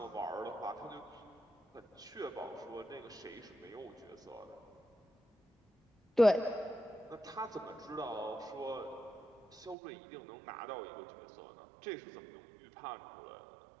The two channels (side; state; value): left; drops out; at 9.8 s